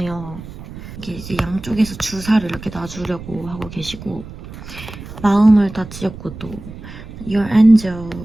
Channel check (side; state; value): right; noise; rumble, 14 dB below the sound